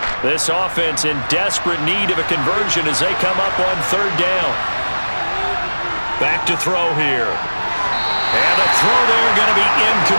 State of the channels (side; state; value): both; inverted; correlation -1.00